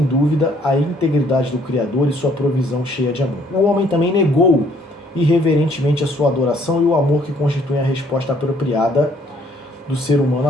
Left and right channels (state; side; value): normal; both; correlation 0.63